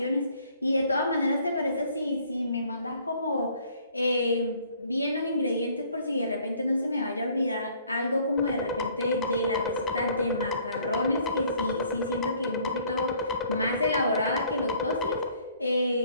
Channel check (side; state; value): both; inverted; correlation -0.59